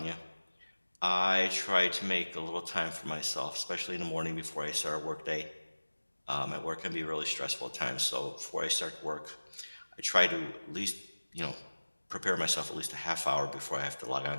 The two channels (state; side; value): inverted; both; correlation -1.00